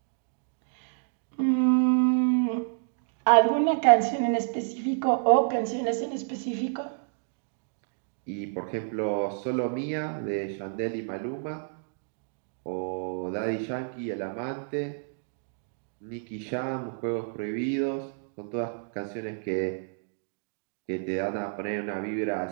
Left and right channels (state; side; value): silent; left; digital silence